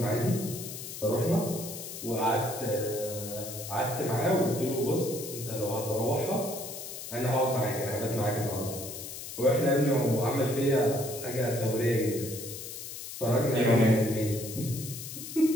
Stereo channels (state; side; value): noise; left; hiss, 9 dB below the sound